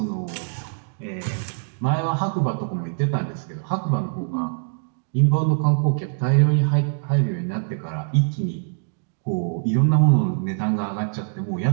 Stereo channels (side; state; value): left; silent; digital silence